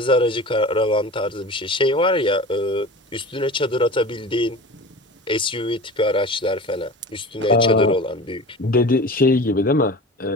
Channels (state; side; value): normal; both; correlation 0.35